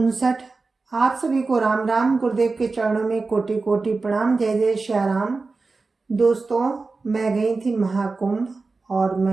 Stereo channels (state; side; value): quieter; left; 3.9 dB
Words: आप सभी को राम राम। गुरुदेव के चरणों में कोटि कोटि प्रणाम। जय जय श्या राम। दोस्तों, मैं गई थी महाकुंभ और